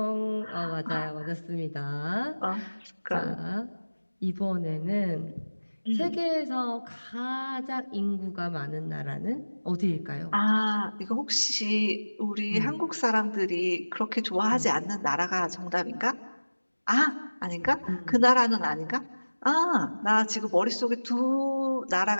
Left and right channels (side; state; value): both; inverted; correlation -1.00